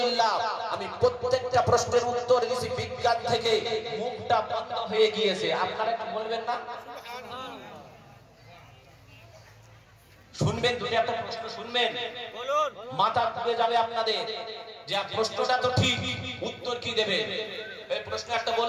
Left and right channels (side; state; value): both; identical; correlation 1.00